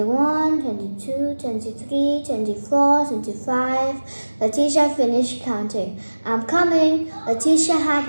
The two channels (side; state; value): both; inverted; correlation -1.00